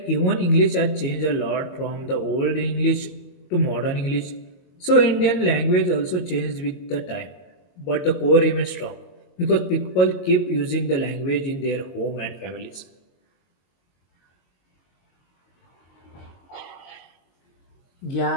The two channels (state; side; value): late; right; 22 ms